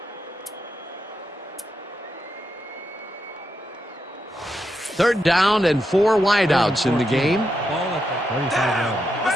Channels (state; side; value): normal; both; correlation 0.84